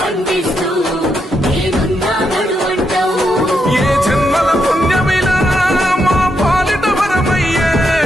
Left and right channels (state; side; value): normal; both; correlation 0.81